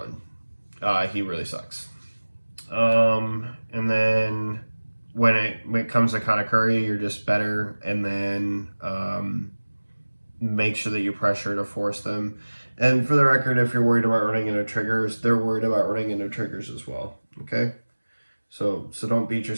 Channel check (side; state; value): both; inverted; correlation -1.00